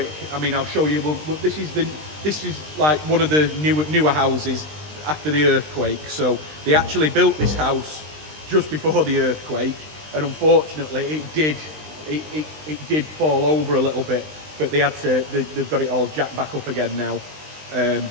I mean, I'll show you. This is like one of the newer houses after the earthquake. So they actually built this house just before the earthquake, and unfortunately, it did fall over a little bit. But they've got it all jacked back up again now.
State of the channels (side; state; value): left; late; 20 ms